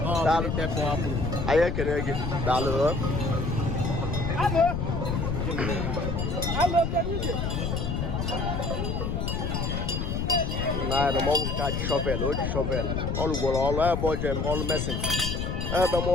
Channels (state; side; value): noise; left; rumble, 1 dB below the sound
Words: ọtepụapụ anyị ekene gị daalụ na mọgwụ nke a ji shọvel o ji shọvel ọ rụgworo ọrụ ebe ọ jem ọrụ mesin ebe